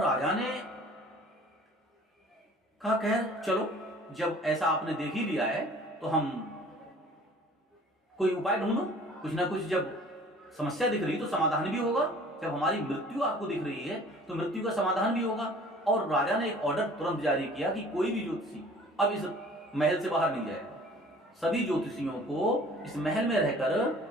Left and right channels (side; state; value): both; normal; correlation 0.49